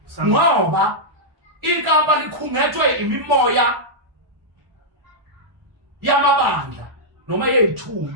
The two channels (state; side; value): late; left; 1.1 ms